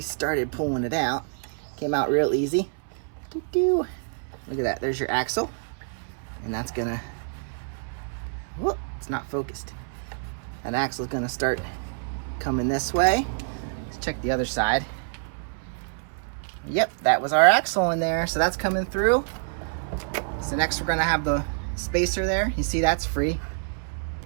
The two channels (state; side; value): silent; left; 60 dB below the other